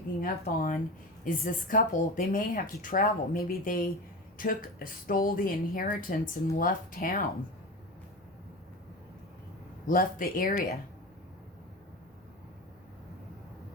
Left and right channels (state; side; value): normal; both; correlation 0.27